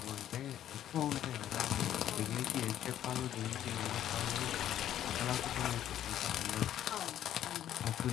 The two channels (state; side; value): quieter; right; 11.3 dB